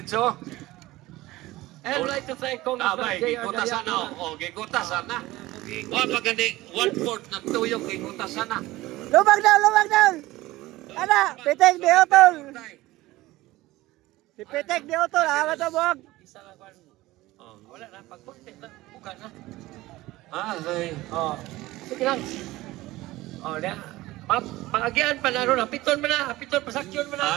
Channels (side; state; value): left; quieter; 18.2 dB